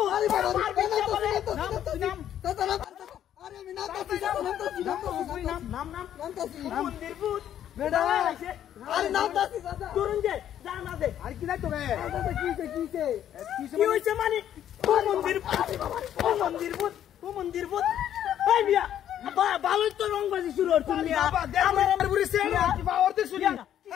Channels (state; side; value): quieter; right; 10.6 dB